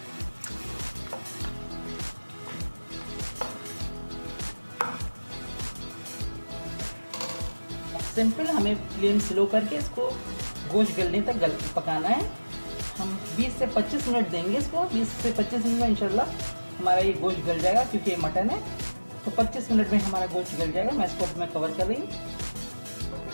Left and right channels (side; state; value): both; inverted; correlation -1.00